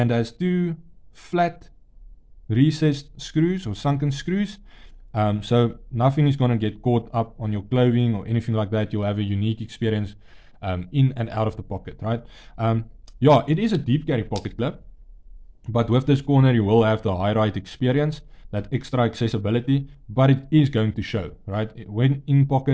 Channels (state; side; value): identical; both; correlation 1.00